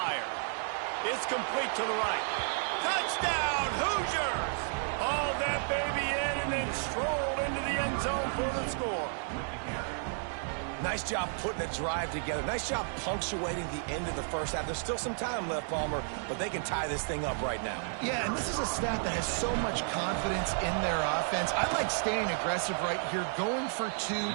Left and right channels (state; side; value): silent; left; 56 dB below the other